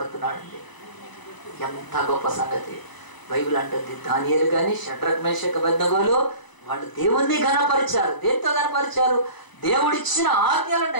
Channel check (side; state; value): right; late; 1.0 ms